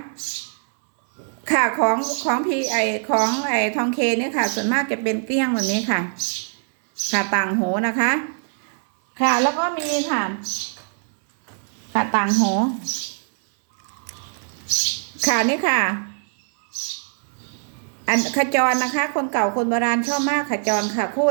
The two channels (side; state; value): left; silent; 64 dB below the other